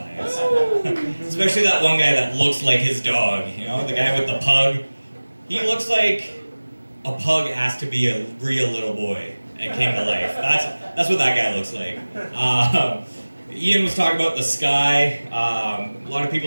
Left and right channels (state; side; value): inverted; both; correlation -1.00